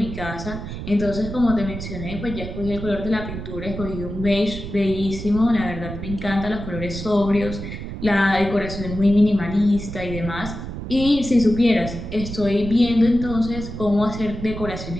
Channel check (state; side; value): noise; right; rumble, 8 dB below the sound